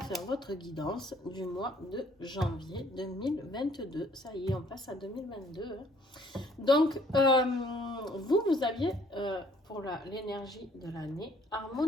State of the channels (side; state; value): both; normal; correlation 0.60